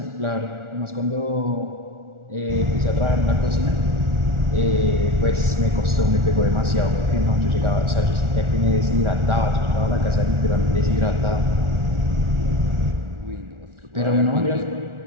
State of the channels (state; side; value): late; left; 1.4 ms